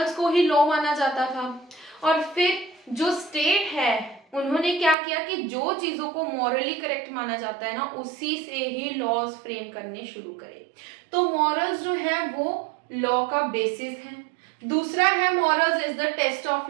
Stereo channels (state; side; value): drops out; left; at 5.0 s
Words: को ही लॉ माना जाता था और फिर जो स्टेट है उन्होंने क्या किया कि जो चीजों को मॉरली करेक्ट माना जाता है ना उसी से ही लॉज फ्रेम करने शुरू करे। तो मॉरल्स जो है वो लॉ का बेसिस है। दूसरा है morals is the test